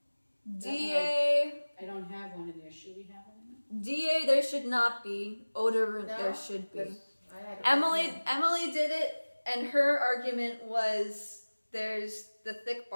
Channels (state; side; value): inverted; both; correlation -1.00